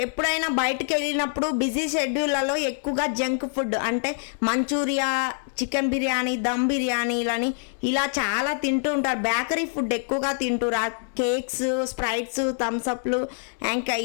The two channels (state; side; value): silent; right; digital silence